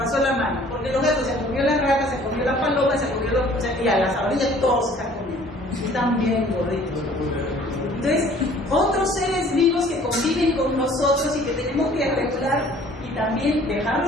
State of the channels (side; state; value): both; normal; correlation 0.53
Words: la mano. Porque los gatos se comió la rata, se comió la paloma, se comió los... O sea, y a las ardillas todos se están comiendo. Y están bien gorditos. Entonces, otros seres vivos que conviven con nosotros y que tenemos que regular y también